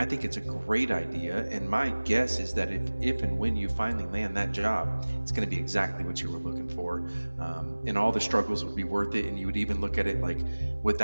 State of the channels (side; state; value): both; inverted; correlation -1.00